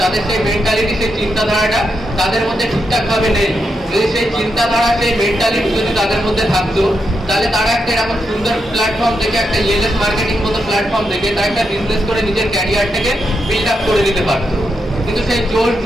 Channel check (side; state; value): both; normal; correlation 0.83